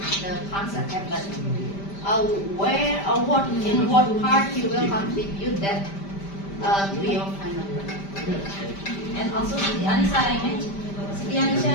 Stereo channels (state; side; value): late; right; 5.1 ms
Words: the concept, but where or what, in what part you will contribute that to your final work. And also, Siti Anissa, I mentioned, Siti Anissa,